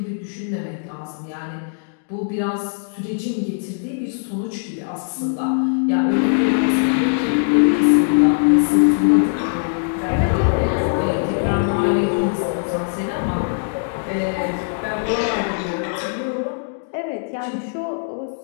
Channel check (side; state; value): right; silent; digital silence